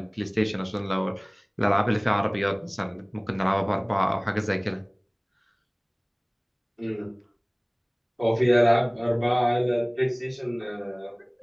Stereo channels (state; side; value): identical; both; correlation 1.00